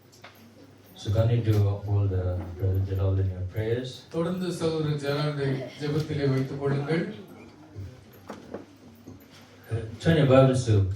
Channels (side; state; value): both; identical; correlation 1.00